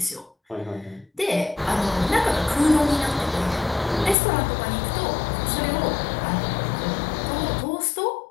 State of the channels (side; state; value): right; drops out; at 4.2 s